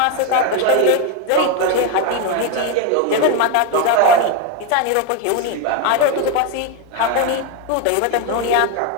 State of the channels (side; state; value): both; different; correlation 0.02